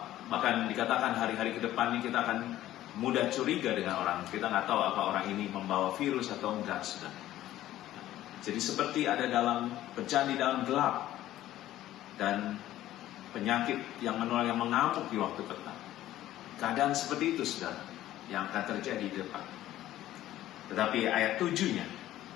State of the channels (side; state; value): right; quieter; 13.9 dB